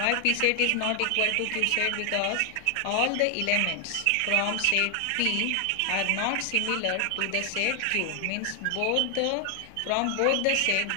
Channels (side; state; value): both; different; correlation 0.00